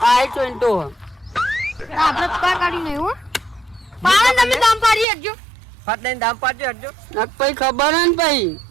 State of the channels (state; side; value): drops out; left; at 5.1 s